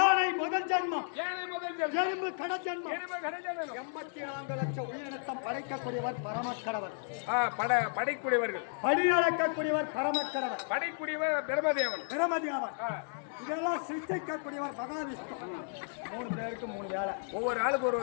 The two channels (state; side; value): silent; right; digital silence